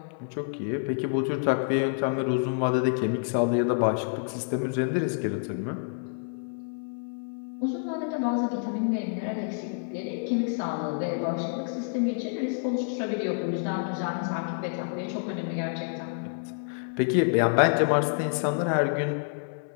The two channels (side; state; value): right; silent; 59 dB below the other